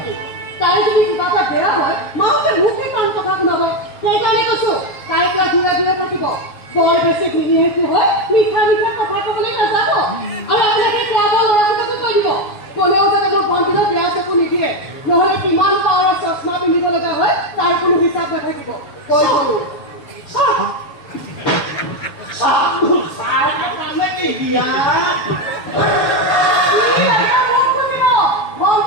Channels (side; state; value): right; late; 7.0 ms